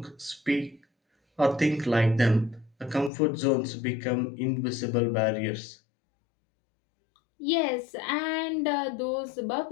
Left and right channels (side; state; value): right; drops out; at 3.1 s